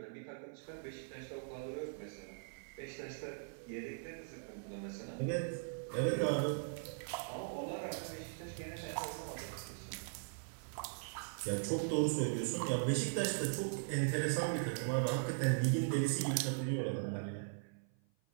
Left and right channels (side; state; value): left; silent; 51 dB below the other